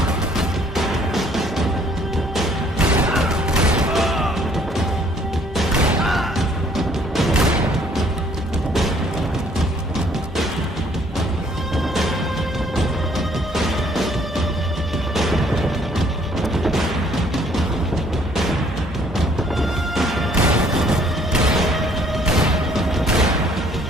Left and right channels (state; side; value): normal; both; correlation 0.62